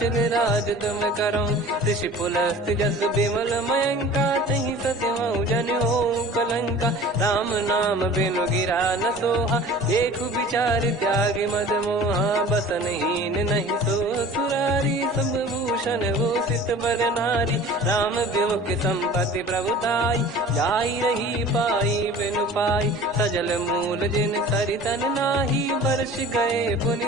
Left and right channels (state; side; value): normal; both; correlation 0.43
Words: राज तुम करो ऋषि पुलस्त जस विमल मयंका तहि सत्यमऊ जन हो कलंका राम नाम बिनु गिरा न सोहा देखु विचार त्याग मद मोहा बसनहीन नहीं सो सुरारी सब भूषण वो सित बर नारी राम विमुख संपत्ति प्रभुताई जाई रही पाई बिनु पाई सजल मूल जिन सरितन नाही वर्ष गए